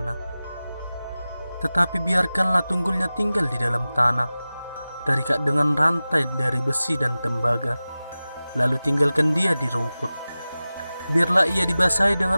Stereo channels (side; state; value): both; inverted; correlation -0.96